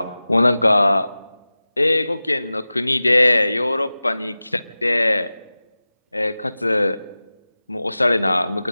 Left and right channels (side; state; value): both; inverted; correlation -0.97